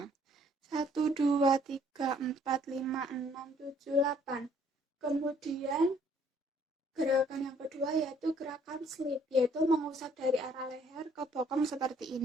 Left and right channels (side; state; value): both; normal; correlation 0.62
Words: 1, 2, 3, 4, 5, 6, 7, 8. Kemudian gerakan yang kedua yaitu gerakan slip, yaitu mengusap dari arah leher ke bokong seperti